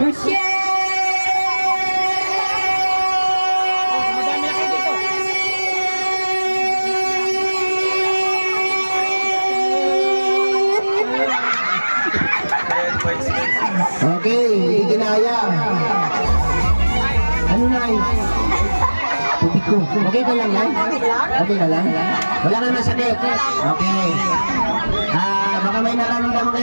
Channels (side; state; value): both; inverted; correlation -1.00